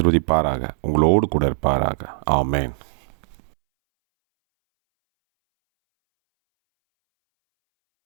உங்களோடு கூட இருப்பாராக. ஆமென்.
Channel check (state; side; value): silent; left; 64 dB below the other